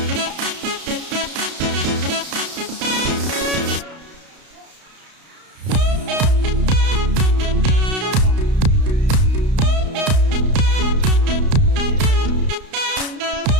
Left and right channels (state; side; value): late; left; 32 ms